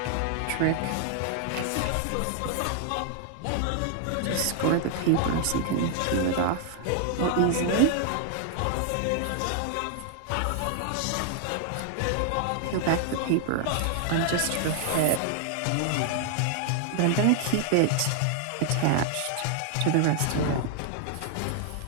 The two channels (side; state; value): both; different; correlation 0.00